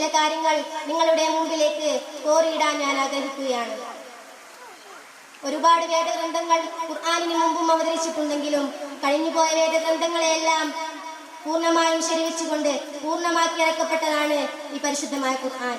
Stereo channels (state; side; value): identical; both; correlation 1.00